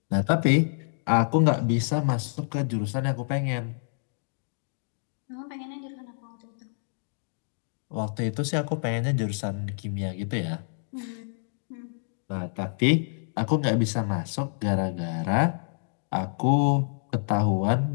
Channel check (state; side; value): silent; right; digital silence